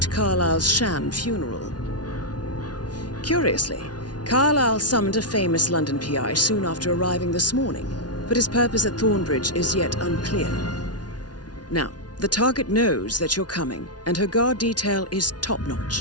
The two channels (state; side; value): late; right; 0.69 ms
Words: Carlyle's sham funeral. Curiously, Carlyle summoned a famous London PI soon after arriving this morning, but his purpose at Thornbridge is yet unclear. Now, the target knows that you're coming, and her guard detail is